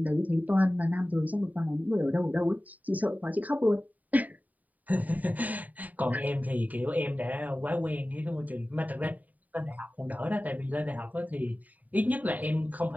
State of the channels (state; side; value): late; left; 0.076 ms